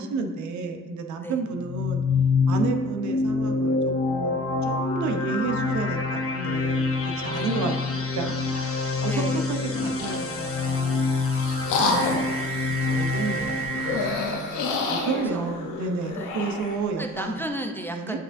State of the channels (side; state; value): both; normal; correlation 0.45